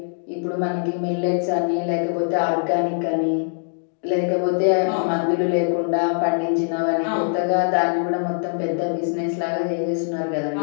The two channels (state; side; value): silent; right; digital silence